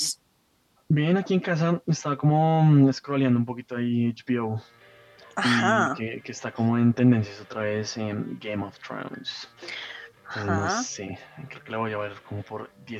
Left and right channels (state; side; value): identical; both; correlation 1.00